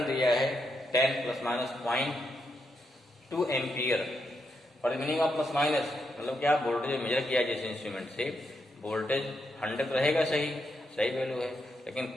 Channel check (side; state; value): both; normal; correlation 0.81